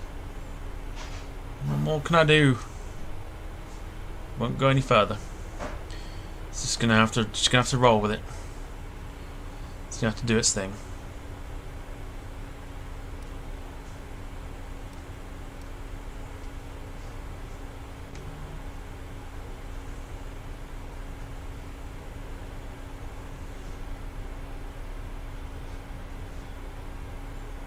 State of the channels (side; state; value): both; identical; correlation 1.00